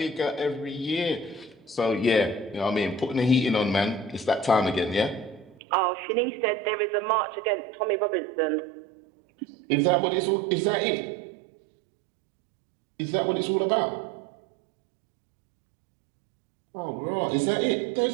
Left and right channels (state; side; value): drops out; left; at 5.6 s